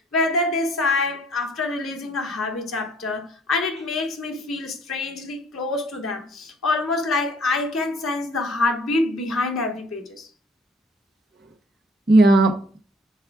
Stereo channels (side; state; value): both; normal; correlation 0.59